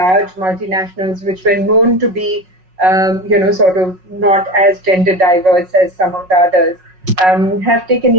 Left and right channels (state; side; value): late; left; 5.4 ms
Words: multinationals which were known to be, not as gender diverse as some of the others, have taken